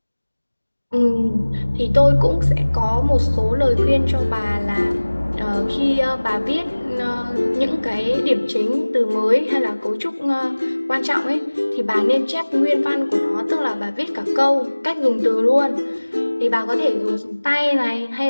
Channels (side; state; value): both; inverted; correlation -1.00